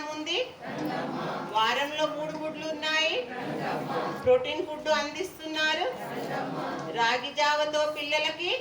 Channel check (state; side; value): identical; both; correlation 1.00